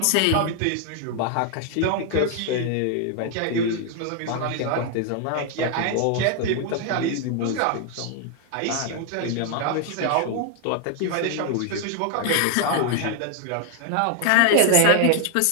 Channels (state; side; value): different; both; correlation 0.00